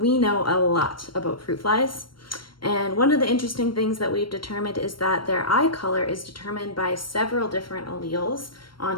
know a lot about fruit flies. And one of the interesting things that we've determined is that their eye color is determined by several different alleles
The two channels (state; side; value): late; right; 0.72 ms